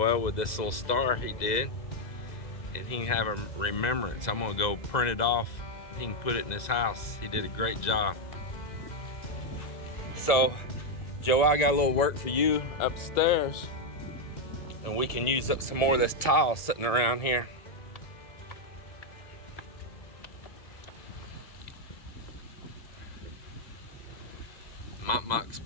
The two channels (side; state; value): right; late; 1.9 ms